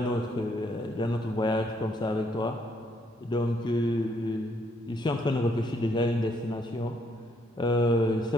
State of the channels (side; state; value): both; normal; correlation 0.71